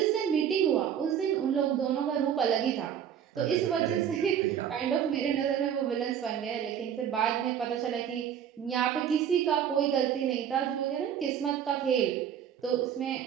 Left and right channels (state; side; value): quieter; left; 9.0 dB